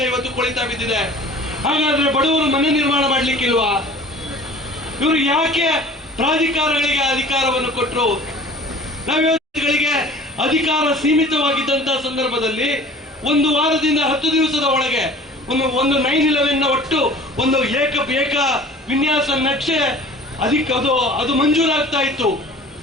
ಬಿದ್ದಿದೆ. ಹಾಗಾದ್ರೆ ಬಡವರು ಮನೆ ನಿರ್ಮಾಣ ಮಾಡ್ಲಿಕ್ಕಿಲ್ವಾ? ಇವರು ಯಾಕೆ ಪ್ರಾಧಿಕಾರಗಳಿಗೆ ಅಧಿಕಾರವನ್ನು ಕೊಟ್ಟರು? ನಾವ್ಗಳಿಗೆ ಅಧಿಕಾರ ಸೀಮಿತವಾಗಿದ್ದಂತಹ ಸಂದರ್ಭದಲ್ಲಿ 1 ವಾರದಿಂದ 10 ದಿವಸದ ಒಳಗೆ ಒಂದು 9/11 ಒಟ್ಟು ಒಂದು ಏಕ ವಿನ್ಯಾಸ ನಕ್ಷೆ ಅದು ಮಂಜೂರಾಗ್ತಾ ಇತ್ತು.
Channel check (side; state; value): both; normal; correlation 0.45